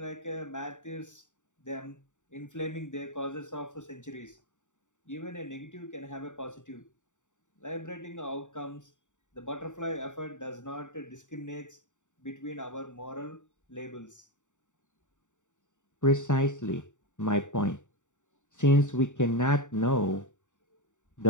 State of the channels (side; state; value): right; late; 0.86 ms